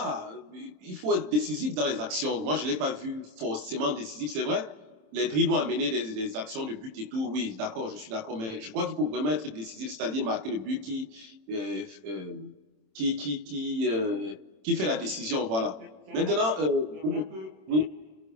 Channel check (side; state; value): left; late; 27 ms